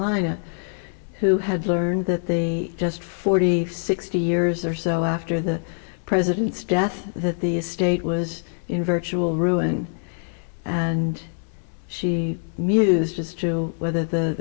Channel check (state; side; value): silent; right; digital silence